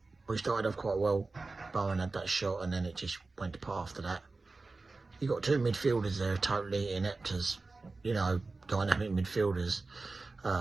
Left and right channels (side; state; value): left; quieter; 3.6 dB